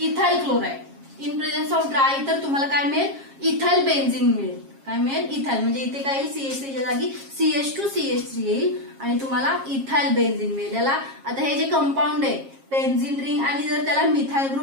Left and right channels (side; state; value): left; late; 7.4 ms